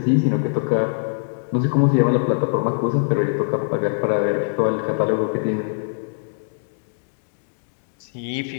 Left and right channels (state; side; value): silent; right; digital silence